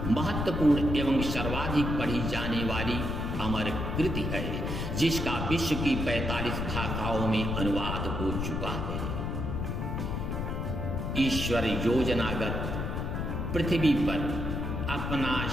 महत्वपूर्ण एवं सर्वाधिक पढ़ी जाने वाली अमर कृति है, जिसका विश्व की 45 भाषाओं में अनुवाद हो चुका है। ईश्वर योजनागत पृथ्वी पर अपना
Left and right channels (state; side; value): noise; left; rumble, 2 dB below the sound